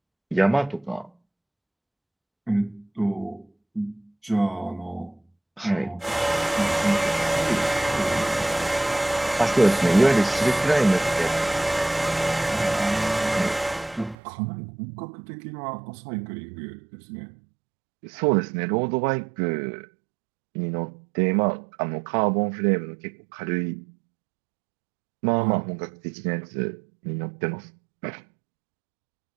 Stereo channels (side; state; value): left; drops out; at 14.2 s